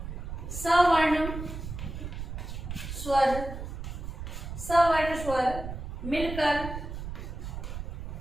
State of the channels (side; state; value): right; noise; rumble, 7 dB below the sound